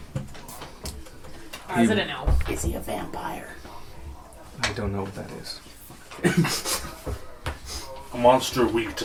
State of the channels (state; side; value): identical; both; correlation 1.00